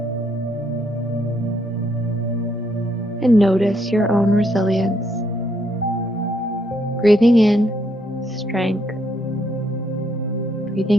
and notice your own resilience. Breathing in, strength.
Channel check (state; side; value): normal; both; correlation 0.73